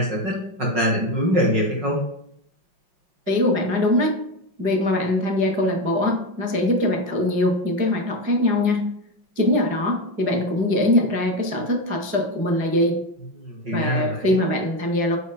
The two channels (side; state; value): left; late; 5.5 ms